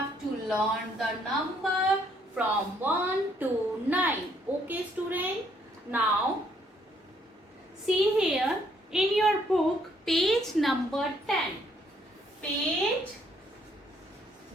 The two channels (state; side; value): normal; both; correlation 0.68